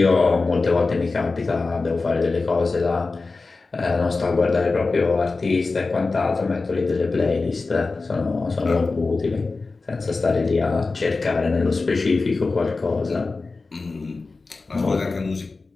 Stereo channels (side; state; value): right; quieter; 3.8 dB